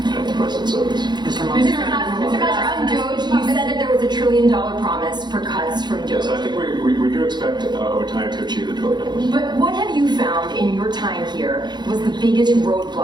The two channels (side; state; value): left; late; 0.21 ms